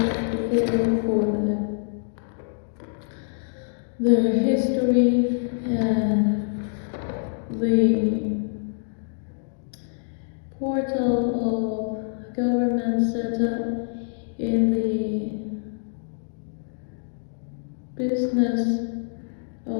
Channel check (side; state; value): right; silent; digital silence